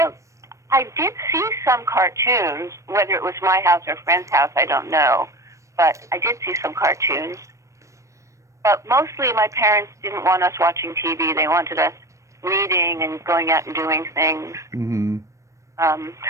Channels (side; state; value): left; late; 0.15 ms